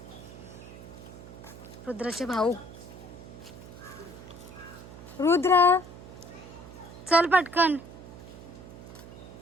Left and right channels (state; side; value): noise; right; hum, 15 dB below the sound